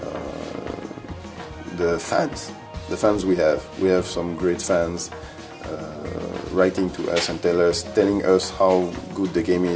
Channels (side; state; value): both; identical; correlation 1.00